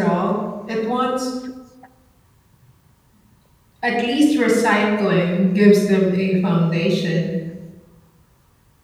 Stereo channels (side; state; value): both; identical; correlation 1.00